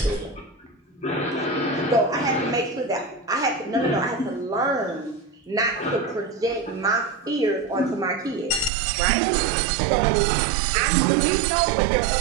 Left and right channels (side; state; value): left; drops out; at 8.7 s